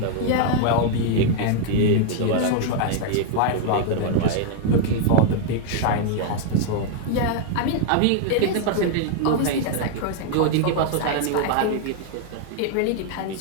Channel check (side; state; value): both; different; correlation 0.00